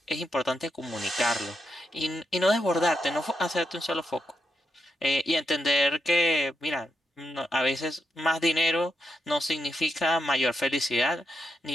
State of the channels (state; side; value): normal; both; correlation 0.83